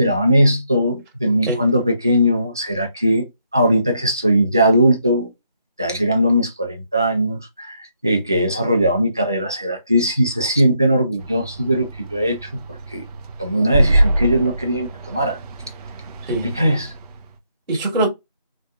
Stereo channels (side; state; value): both; inverted; correlation -0.76